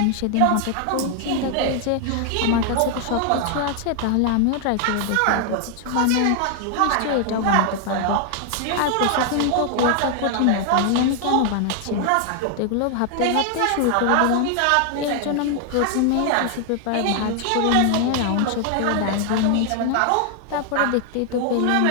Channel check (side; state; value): both; different; correlation 0.00